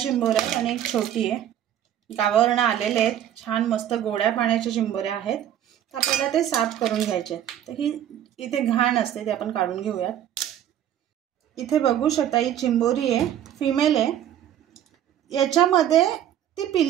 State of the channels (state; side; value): quieter; left; 10.9 dB